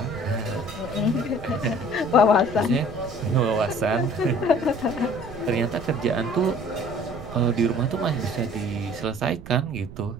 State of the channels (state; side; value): noise; right; rumble, 15 dB below the sound